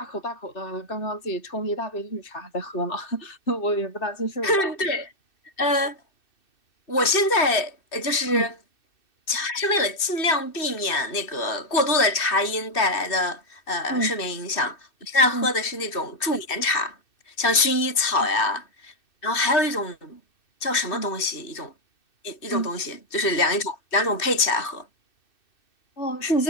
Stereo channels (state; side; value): late; right; 2.6 ms